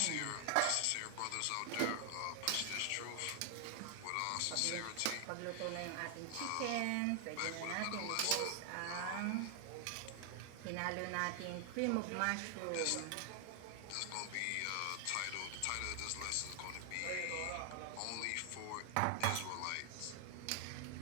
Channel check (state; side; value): different; both; correlation 0.00